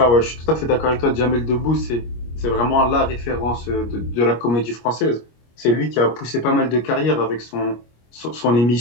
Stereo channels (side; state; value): right; late; 25 ms